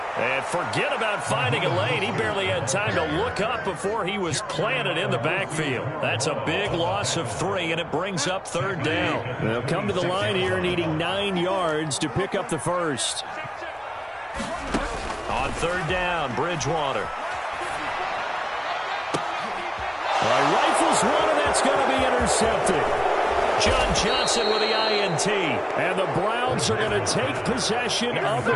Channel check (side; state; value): both; identical; correlation 1.00